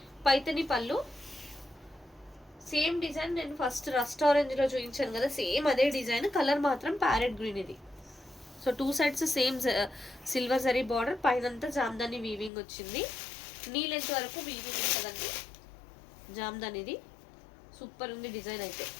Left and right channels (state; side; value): drops out; right; at 12.5 s